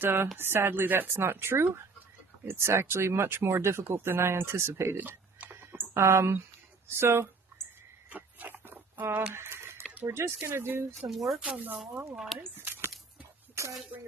sadly that's not true. It's actually much more difficult than I anticipated. We're just going to do some work on the long lines to try to bring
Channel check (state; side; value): quieter; left; 4.4 dB